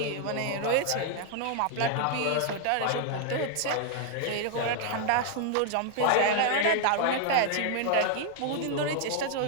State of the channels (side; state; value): both; different; correlation 0.00